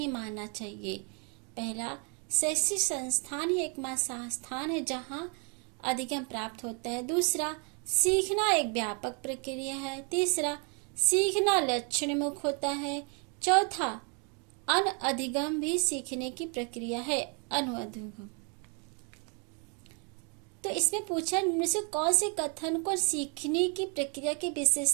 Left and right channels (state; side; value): quieter; left; 37.1 dB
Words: मानना चाहिए? पहला, शैक्षिक संस्थान ही एकमात्र संस्थान है जहां अधिगम प्राप्त होता है। दूसरा, सीखना एक व्यापक प्रक्रिया है। तीसरा, सीखना लक्षणमुख होता है। चौथा, अनअधिगम भी सीखने की प्रक्रिया है। अनुअधिगम। तो इसमें पूछा, इनमें से कौन से कथन को सीखने की प्रक्रिया की